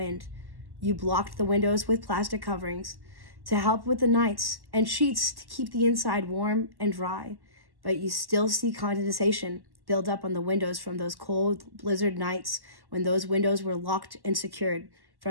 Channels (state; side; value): late; left; 1.1 ms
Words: You blocked the windows with plastic coverings to help with the nights and sheets to keep the inside warm and dry. But you still see condensation build up on the windows from those cold blizzard nights when those windows were locked and secured